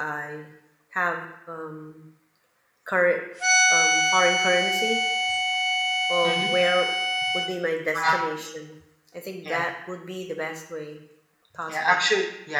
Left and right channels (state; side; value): identical; both; correlation 1.00